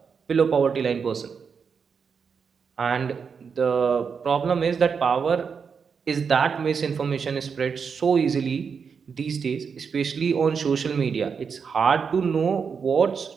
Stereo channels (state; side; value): quieter; left; 6.1 dB